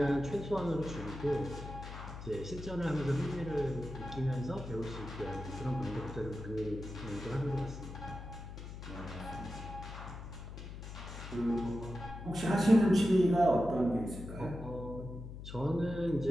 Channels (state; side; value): noise; left; hum, 10 dB below the sound